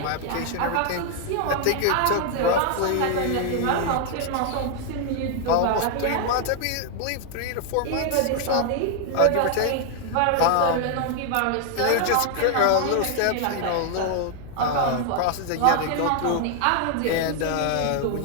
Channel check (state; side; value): different; both; correlation 0.00